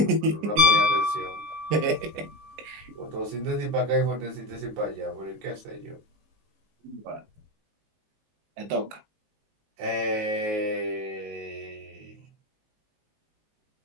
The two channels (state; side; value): late; left; 19 ms